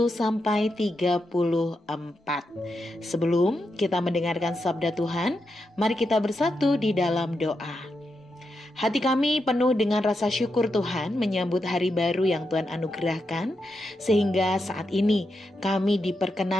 sampai 34. Sebelum kita mendengarkan sabda Tuhan, mari kita bersatu di dalam doa. Hati kami penuh dengan rasa syukur Tuhan menyambut hari baru yang Tuhan anugerahkan, sehingga saat ini kami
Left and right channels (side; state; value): both; normal; correlation 0.85